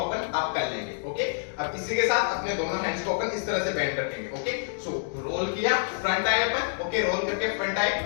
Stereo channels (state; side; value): silent; right; digital silence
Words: अप कर लेंगे। ओके, अब इसी के साथ अपने दोनों हैंड्स को अपन इस तरह से बेंड रखेंगे। ओके, सो रोल किया, फ्रंट आए अपन। ओके, रोल करके फ्रंट आए,